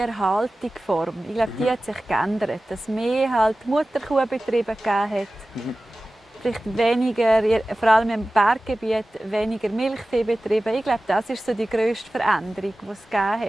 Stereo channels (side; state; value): both; normal; correlation 0.96